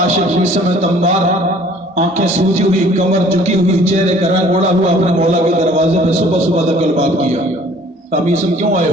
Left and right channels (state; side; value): normal; both; correlation 0.54